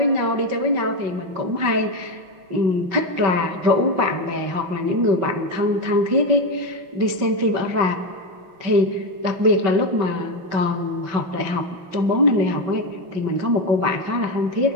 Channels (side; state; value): left; late; 5.3 ms